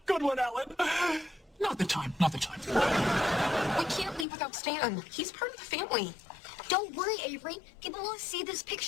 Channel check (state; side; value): drops out; right; at 4.2 s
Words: Good one, Ellen. Not the time. We can't leave without Stan. He's part of the family. Don't worry, Avery. People will see this